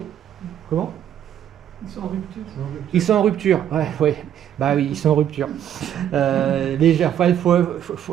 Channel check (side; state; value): left; quieter; 10.3 dB